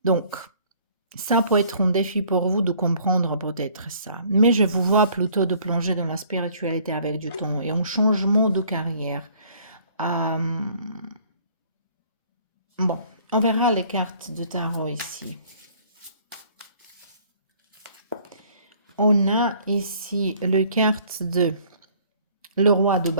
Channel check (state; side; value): inverted; both; correlation -0.57